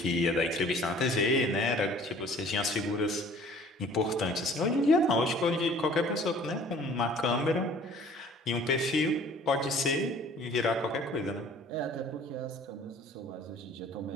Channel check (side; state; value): both; normal; correlation 0.51